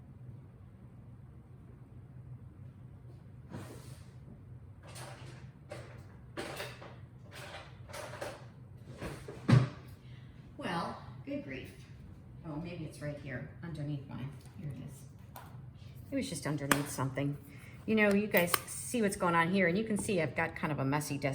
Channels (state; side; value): identical; both; correlation 1.00